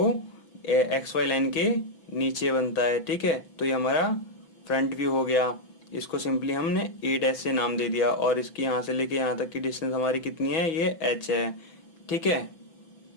एक्स वाई लाइन के नीचे बनता है। ठीक है, तो ये हमारा फ्रंट व्यू हो गया। इसको सिंपली हमने ए डैश से नाम दे दिया, और इसकी यहाँ से लेके यहाँ तक की डिस्टेंस हमारी कितनी है, ये एच है। ठीक है,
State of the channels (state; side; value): late; right; 6.0 ms